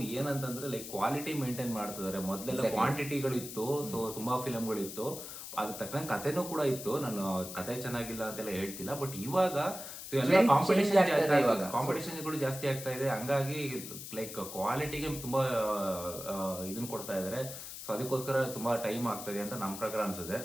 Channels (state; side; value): noise; left; hiss, 10 dB below the sound